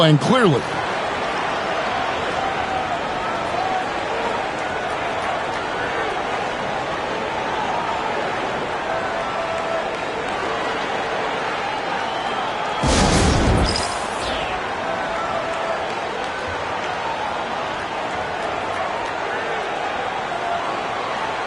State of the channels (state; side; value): identical; both; correlation 1.00